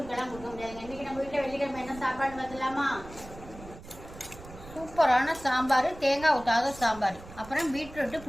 கொடுக்க முடியாதுங்க. இன்னைக்கு நம்ம வீட்டுல வெள்ளிக்கிழமை என்ன சாப்பாடு பார்த்துலாமா? சூப்பரான சாம்பார், தேங்காய் ஊற்றாத சாம்பார், அப்புறம் பீட்ரூட்டு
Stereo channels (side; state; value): right; noise; rumble, 16 dB below the sound